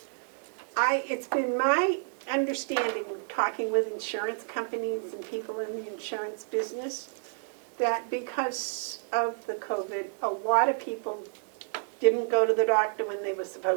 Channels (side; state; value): left; silent; digital silence